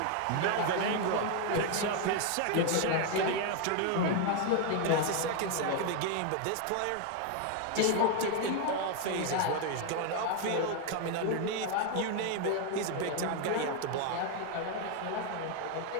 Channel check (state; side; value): different; both; correlation 0.01